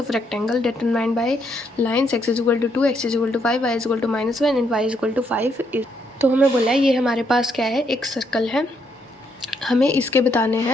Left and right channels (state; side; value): normal; both; correlation 0.75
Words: of rectangle determined by lines x is equal to 2 x is equal to 5 y is equal to -1 and y is equal to 5 is। तो हमें बोला है ये हमारे पास क्या है, एक circle है, हमें इसके बताने